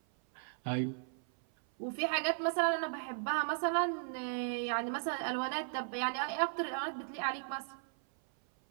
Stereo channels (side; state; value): left; silent; 54 dB below the other